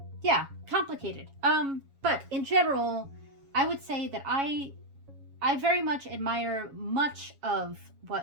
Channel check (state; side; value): late; left; 7.2 ms